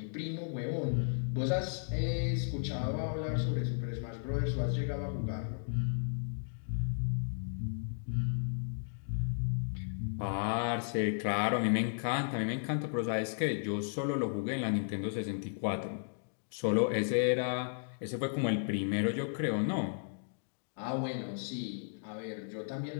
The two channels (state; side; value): silent; right; digital silence